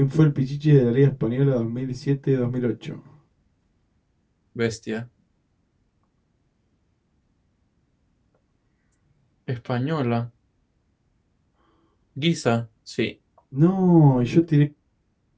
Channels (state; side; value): identical; both; correlation 1.00